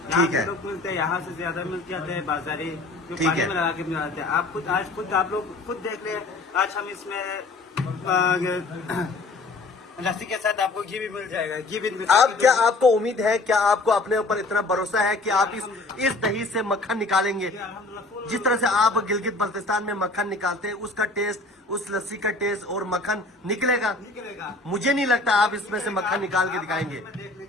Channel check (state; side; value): quieter; right; 3.1 dB